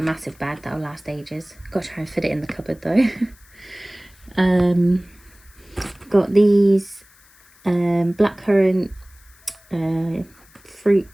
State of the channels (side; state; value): left; noise; hiss, 28 dB below the sound